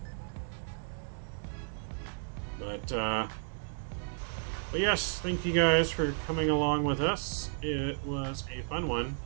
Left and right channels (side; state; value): left; silent; digital silence